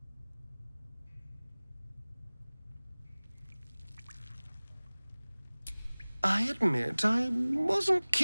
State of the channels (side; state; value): both; inverted; correlation -1.00